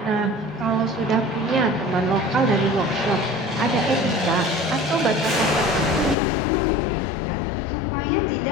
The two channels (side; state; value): right; drops out; at 6.2 s